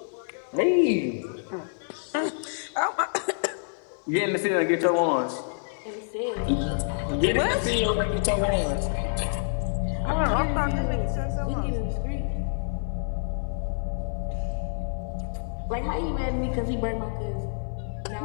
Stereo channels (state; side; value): silent; right; digital silence